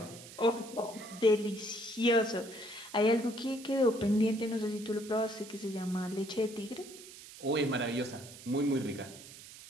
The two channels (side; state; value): right; noise; hiss, 16 dB below the sound